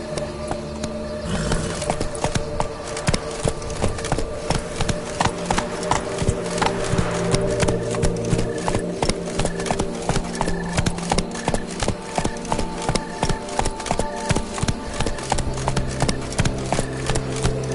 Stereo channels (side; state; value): both; identical; correlation 1.00